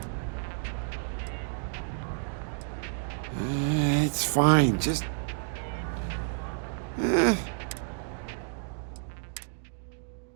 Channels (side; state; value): left; silent; digital silence